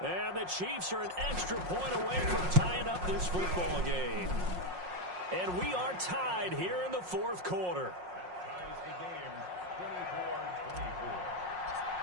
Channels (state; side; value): late; left; 5.5 ms